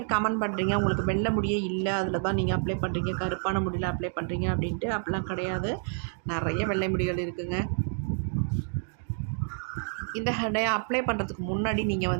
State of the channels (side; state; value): left; silent; 59 dB below the other